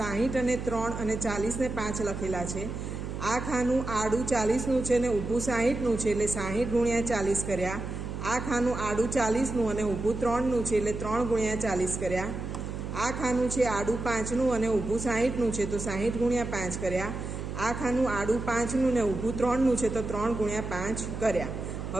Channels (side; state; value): right; noise; hum, 6 dB below the sound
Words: અને 3 અને 40 ને 5 લખેલા છે. આ ખાનું આડું 40નું છે ને ઊભું 60નું છે, એટલે 60 ગુણ્યા 40 કર્યા. આ ખાનું આડું 40નું અને ઊભું 3નું છે, એટલે 3 ગુણ્યા 40 કર્યા. આ ખાનું છે આડું 5નું અને ઊભું 60નું છે, તો 60 ગુણ્યા 5 કર્યા. આ ખાનું આડું 5નું ને ઊભું 3નું છે, તો 3 ગુણ્યા 5 કર્યા.